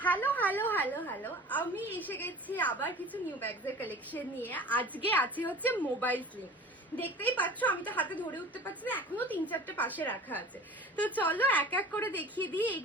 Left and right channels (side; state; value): both; normal; correlation 0.40